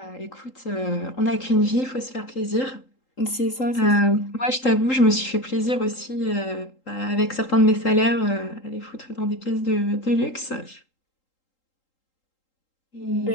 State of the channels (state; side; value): late; right; 3.8 ms